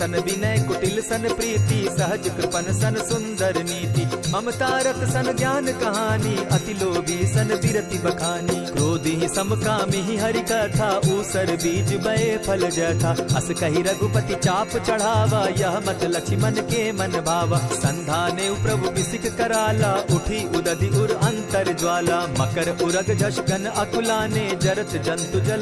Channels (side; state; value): both; identical; correlation 1.00